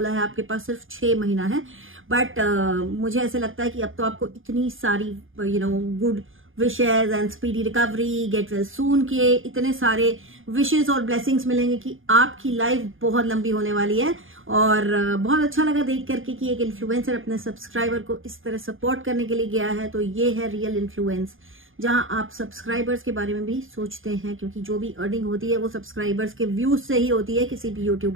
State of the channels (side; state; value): left; late; 0.59 ms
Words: है आपके पास सिर्फ 6 महीना है। बट मुझे ऐसे लगता है कि अब तो आपको इतनी सारी good wishes and speedy recovery, get well soon के इतने सारे विशेज और ब्लेसिंग्स मिलेंगे कि आपकी लाइफ बहुत लंबी होने वाली है। और बहुत अच्छा लगा देख करके कि एक इन्फ्लुएंसर अपने सब्सक्राइबर को इस तरह सपोर्ट करने के लिए गया है। तो ये है रियल इन्फ्लुएंस, जहां आप सब्सक्राइबर्स के बारे में भी सोचते हैं, क्योंकि जो भी अर्निंग होती है वो सब्सक्राइबर्स के व्यूज से ही होती है किसी भी